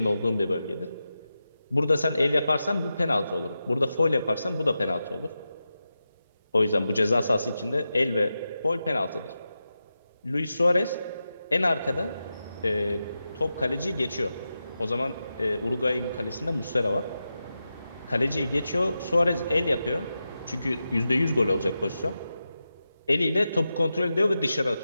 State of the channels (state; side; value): inverted; both; correlation -0.91